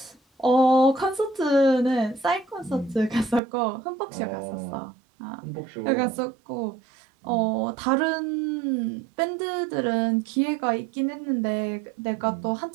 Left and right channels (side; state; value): left; drops out; at 3.4 s